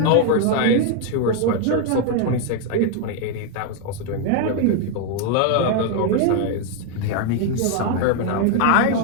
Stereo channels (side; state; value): both; different; correlation 0.01